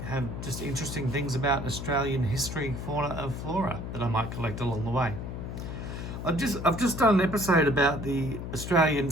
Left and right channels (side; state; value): left; noise; hum, 7 dB below the sound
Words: have just interesting things about Australian history, fauna and flora that I might collect along the way. I've just done an episode about the Australian